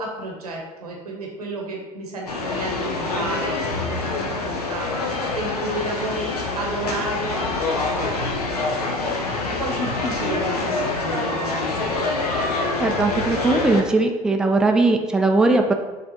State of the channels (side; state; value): both; normal; correlation 0.48